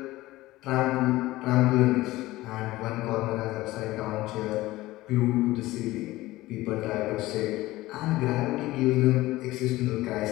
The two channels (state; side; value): quieter; right; 17.9 dB